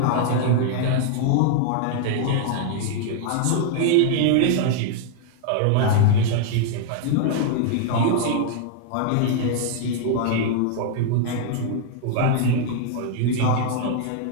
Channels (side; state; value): both; different; correlation -0.01